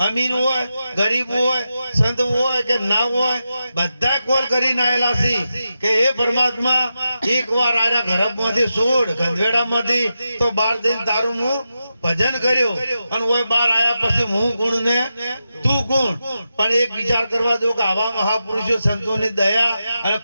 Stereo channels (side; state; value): both; inverted; correlation -0.89